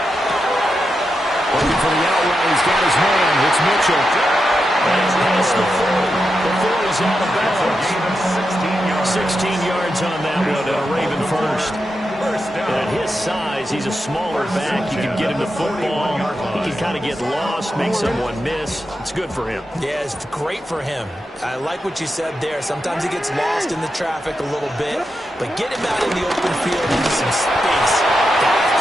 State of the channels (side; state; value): both; normal; correlation 0.87